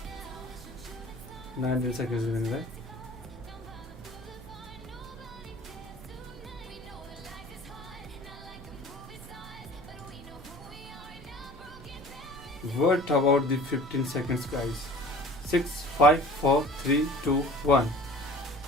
Nine seconds remaining, right? What about the 15 seconds, guys? 6, 5, 4, 3, 2, 1.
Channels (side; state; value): both; normal; correlation 0.45